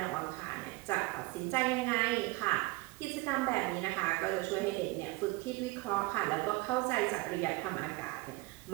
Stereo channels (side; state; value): left; quieter; 23.6 dB